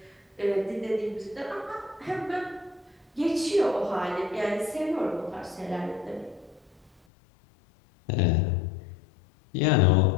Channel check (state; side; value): drops out; right; at 6.9 s